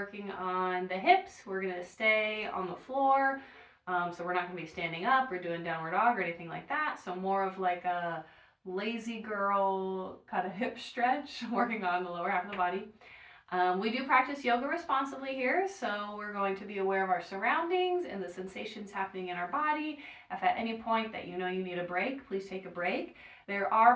on the hips. We're going to stay on the floor. So we're not going to be standing up or doing downward dog or anything like that. So more of like a lazy girl kind of hip stretch, working on the lower half of the body. We do practice yoga responsibly here, so we're going to be aware of our surroundings and the sensations happening in our body. If at any point that you know you need a break, please take a break. There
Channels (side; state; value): both; identical; correlation 1.00